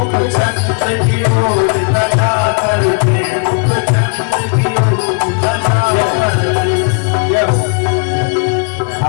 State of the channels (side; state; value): right; quieter; 36.6 dB